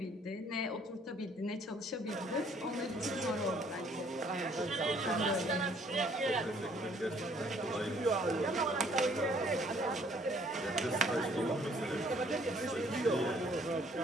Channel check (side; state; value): both; normal; correlation 0.62